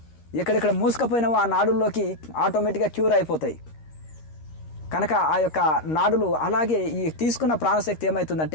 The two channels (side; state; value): right; late; 13 ms